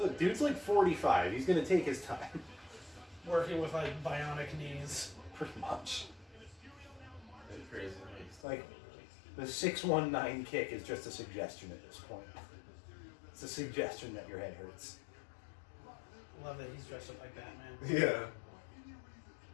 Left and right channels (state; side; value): drops out; right; at 8.5 s